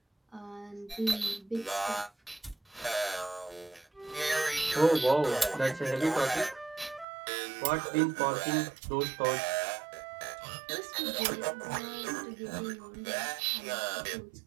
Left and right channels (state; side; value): drops out; left; at 7.1 s